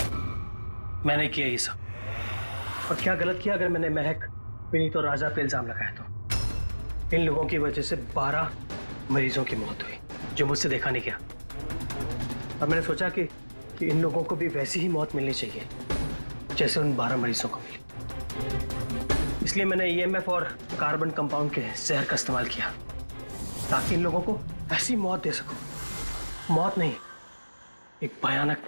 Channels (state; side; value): inverted; both; correlation -1.00